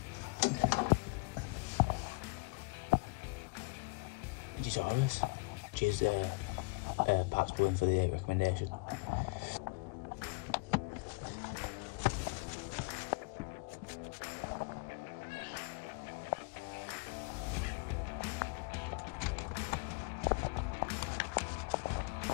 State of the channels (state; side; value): quieter; right; 27.7 dB